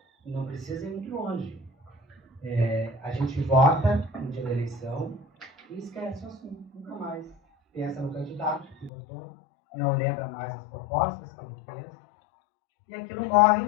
não precisa ir muito longe. A gente vota no dia da eleição e esquece o assunto, nunca mais. Pensa no candidato que votou, não lembra mais as propostas que ele fez, e aquilo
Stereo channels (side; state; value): right; drops out; at 8.9 s